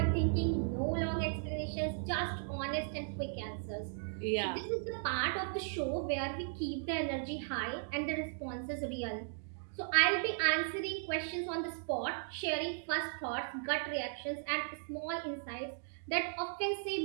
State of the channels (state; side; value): silent; left; digital silence